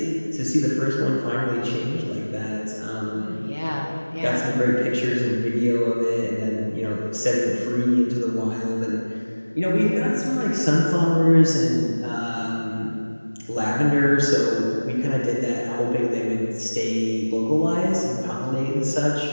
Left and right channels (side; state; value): both; inverted; correlation -1.00